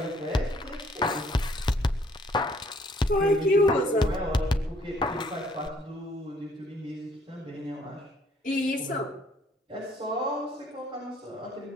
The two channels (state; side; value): normal; both; correlation 0.64